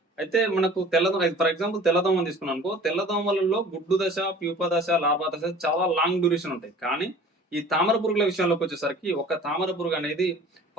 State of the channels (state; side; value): normal; both; correlation 0.45